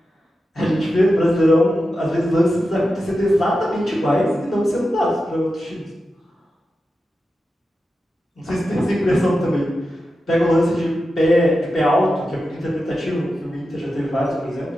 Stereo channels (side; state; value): both; normal; correlation 0.91